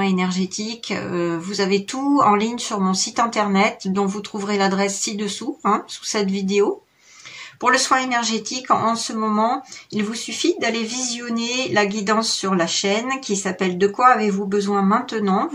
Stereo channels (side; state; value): both; identical; correlation 1.00